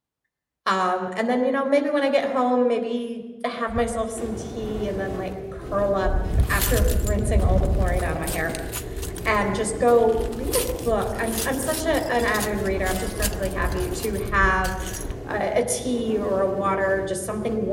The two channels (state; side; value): identical; both; correlation 1.00